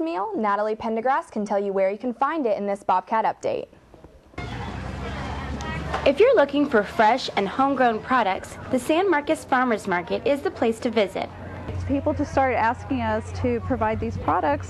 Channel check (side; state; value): both; identical; correlation 1.00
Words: Natalie Pendergrass can tell you where you can find it in this Bobcat update. If you're looking for fresh and homegrown products, the San Marcos Farmers Market is the place to visit. People just started asking us to provide these products,